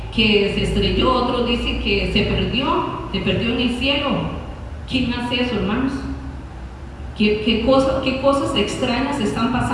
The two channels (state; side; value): identical; both; correlation 1.00